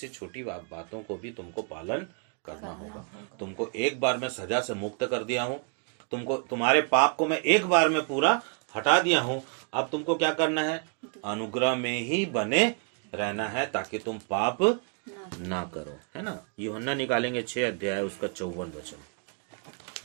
छोटी बातों को भी तुमको पालन करना होगा। तुमको एक बार मैं सजा से मुक्त कर दिया हूँ, तुमको तुम्हारे पाप को मैं एक बार में पूरा हटा दिया हूँ। अब तुमको क्या करना है, अनुग्रह में ही बने रहना है ताकि तुम पाप ना करो, है ना। यूहन्ना निकालेंगे 6 अध्याय उसका 54 वचन,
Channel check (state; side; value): quieter; left; 38.1 dB